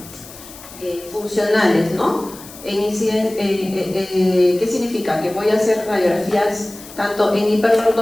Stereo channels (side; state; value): left; noise; hiss, 17 dB below the sound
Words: funcionales, ¿no? ¿Qué significa? Que voy a hacer radiografías tanto en